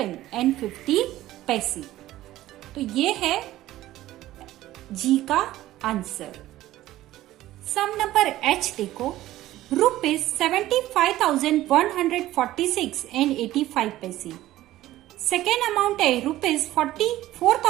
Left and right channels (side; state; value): left; quieter; 15.1 dB